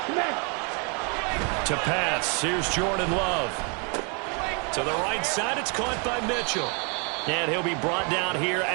To pass, here's Jordan Love. To the right side, it's caught by Mitchell. And he'll be brought down here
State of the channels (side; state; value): left; quieter; 36.1 dB